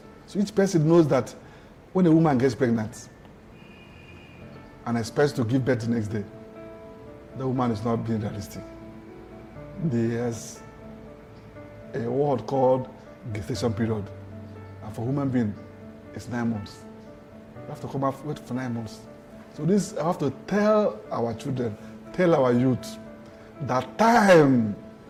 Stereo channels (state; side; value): identical; both; correlation 1.00